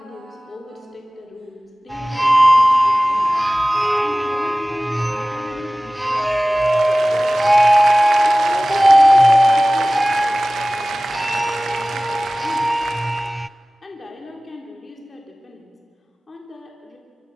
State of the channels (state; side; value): normal; both; correlation 0.98